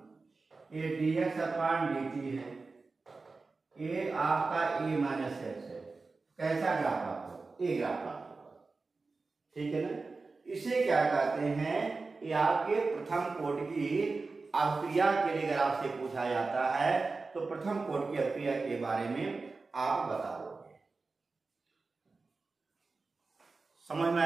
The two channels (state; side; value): quieter; left; 3.9 dB